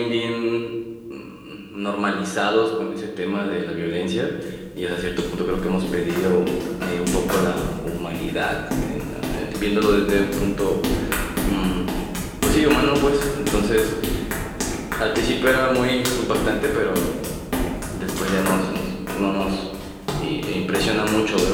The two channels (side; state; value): both; identical; correlation 1.00